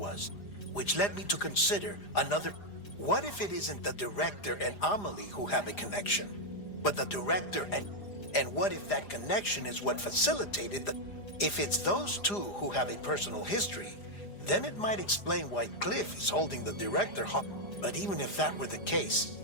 which led me to consider another... What if it isn't the director and Amelie who have a connection, but the director and what if that connection is what facilitated the... If it's those two who have a personal history, then it might explain why Cliff is holding the director hostage. But even if that were the case,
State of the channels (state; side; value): late; right; 4.9 ms